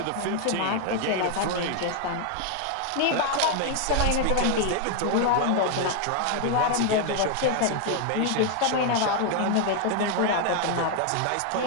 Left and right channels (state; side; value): different; both; correlation 0.00